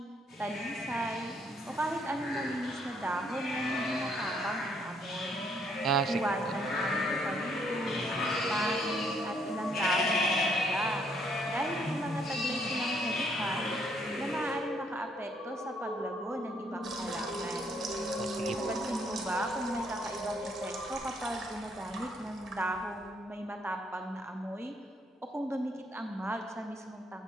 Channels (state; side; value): normal; both; correlation 0.69